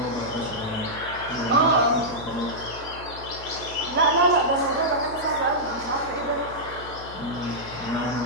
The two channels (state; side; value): noise; left; hum, 15 dB below the sound